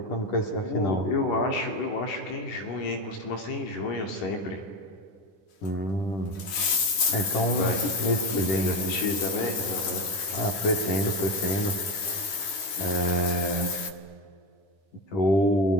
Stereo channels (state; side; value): late; right; 11 ms